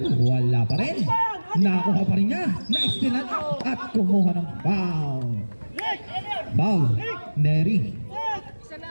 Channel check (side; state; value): both; inverted; correlation -1.00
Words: wala pa rin. Nakuha pa rin niya. Naistilan at kumuha ng foul. Foul. Neri.